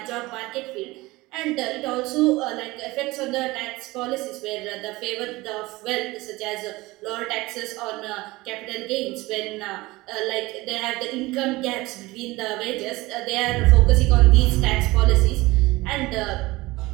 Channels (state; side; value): quieter; left; 20.6 dB